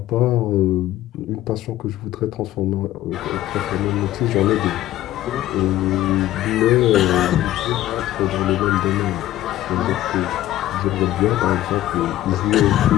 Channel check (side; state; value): right; quieter; 14.4 dB